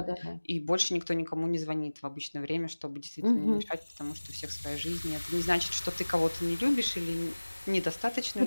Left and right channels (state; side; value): inverted; both; correlation -1.00